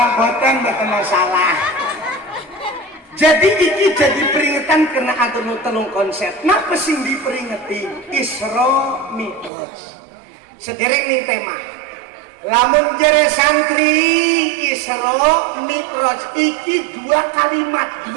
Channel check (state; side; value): drops out; left; at 9.5 s